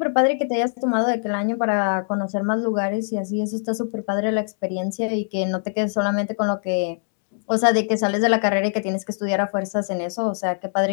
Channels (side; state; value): right; silent; digital silence